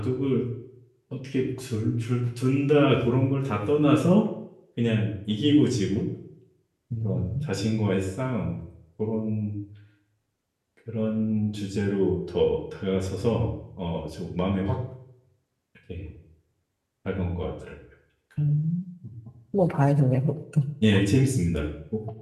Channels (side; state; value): both; identical; correlation 1.00